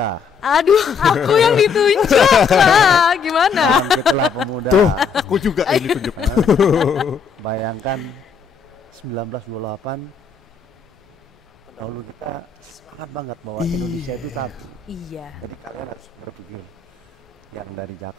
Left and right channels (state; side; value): quieter; right; 5.9 dB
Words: Aduh, aku yang ditunjuk lah. Gimana? bangkitlah pemuda. Aku juga ini tunjuk. Bayangkan 1928 dahulu kita semangat banget bahwa Indonesia itu satu. Iya. Jadi kalian harus berpikir yang dari